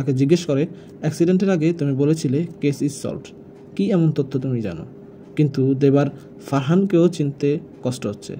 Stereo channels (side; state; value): both; identical; correlation 1.00